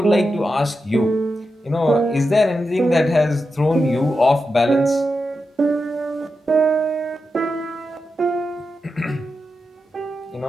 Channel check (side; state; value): both; normal; correlation 0.89